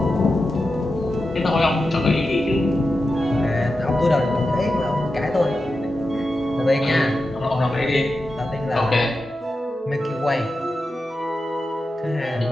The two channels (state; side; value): normal; both; correlation 0.91